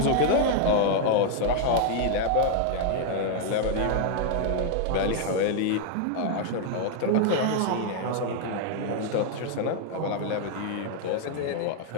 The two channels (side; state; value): both; different; correlation 0.00